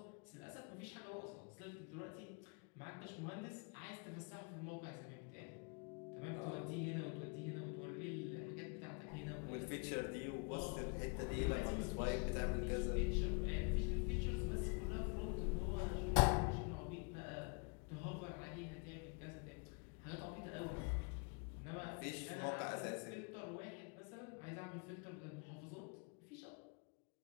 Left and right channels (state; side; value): quieter; right; 35.2 dB